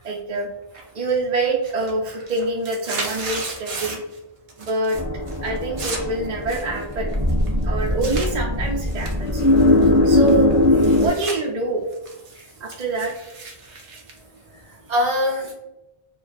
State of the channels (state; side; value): late; left; 1.5 ms